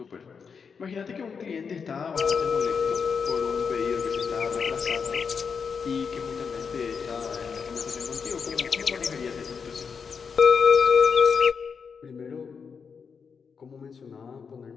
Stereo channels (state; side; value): quieter; right; 5.9 dB